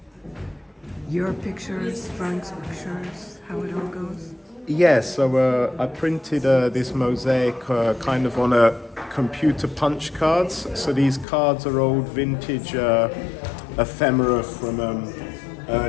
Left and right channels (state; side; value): drops out; right; at 11.2 s